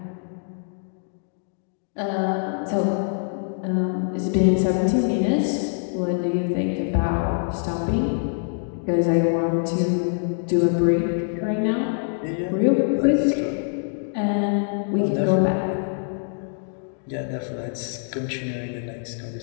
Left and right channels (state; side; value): silent; right; digital silence